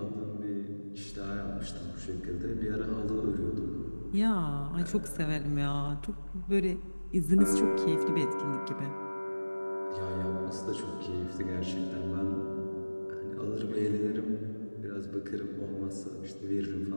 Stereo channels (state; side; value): inverted; both; correlation -1.00